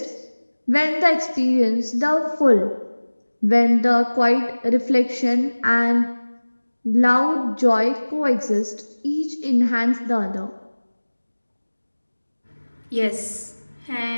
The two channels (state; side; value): inverted; both; correlation -1.00